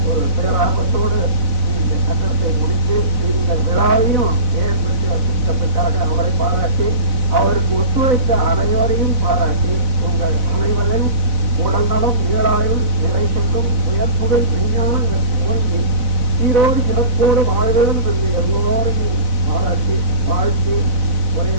ஒரு பேராபத்தோடு இந்த கட்டணத்தை முடித்து இந்த விழாவையும் ஏற்படுத்தி வசிப்பதற்காக அவரை பாராட்டி, அவருக்கு ஒத்துழைத்த அனைவரையும் பாராட்டி, உங்கள் அனைவரையும் உடல் நலம், நீளாயுள், நிறை செல்லும், உயர்ப்புகள், விஞ்ஞானம் ஓங்கி சீரோடு சிறப்போடு வாழ்வதும் என்று எல்லோரையும் பாராட்டி வாழ்த்தி உரையை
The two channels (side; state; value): left; late; 4.0 ms